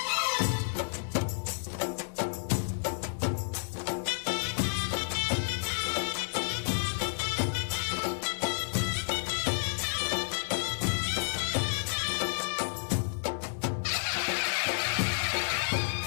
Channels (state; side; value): silent; right; digital silence